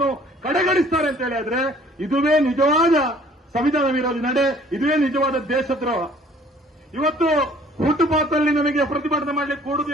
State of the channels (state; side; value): normal; both; correlation 0.55